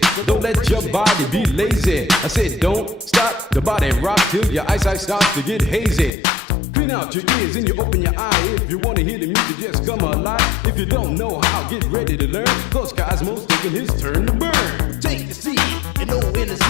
Don't let your body be lazy. I said don't stop the body rock till your eyesight starts to get hazy. Clean out your ears and you open your eye. If you want to hear the music, just come alive. If you don't know how, get ready to learn. Cause Cosmo's taking his turn to burn. Take the C and O in the C,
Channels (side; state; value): right; drops out; at 6.1 s